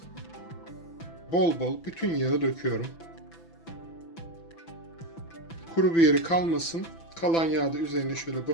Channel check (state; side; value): late; right; 6.0 ms